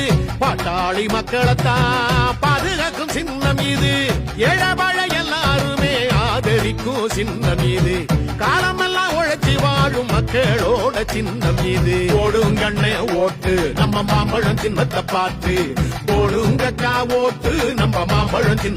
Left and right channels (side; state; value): both; identical; correlation 1.00